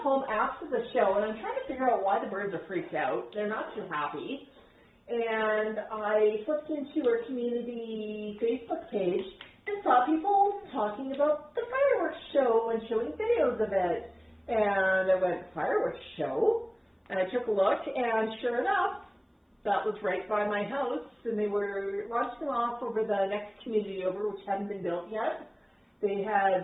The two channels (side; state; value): both; identical; correlation 1.00